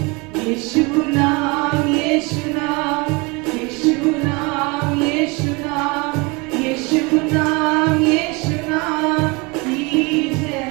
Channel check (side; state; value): left; quieter; 27.7 dB